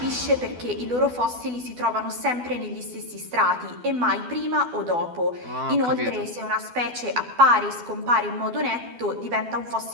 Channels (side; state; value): left; late; 12 ms